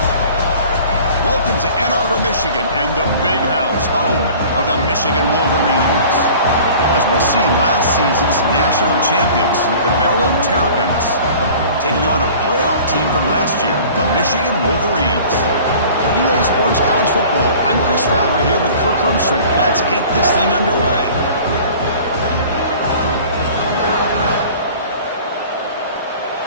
Welcome to Ann Arbor, Michigan, and the Big House, home of the Michigan Wolverines. As we'll see, last season's national champions, the Maryland Terrapins, taking on a playoff team from last year, the Michigan Wolverines. For EA Sports College Football, I'm Chris Fowler here with Kirk Hermstreet. Let's get this thing underway.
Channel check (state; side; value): inverted; both; correlation -0.45